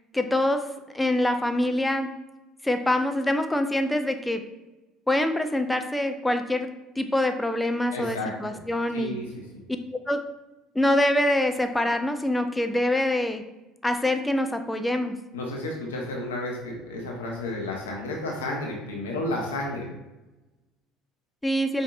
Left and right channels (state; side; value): normal; both; correlation 0.82